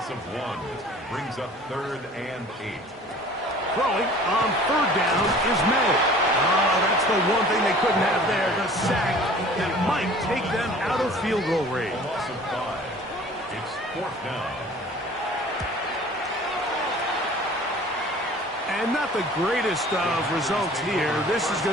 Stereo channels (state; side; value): normal; both; correlation 0.47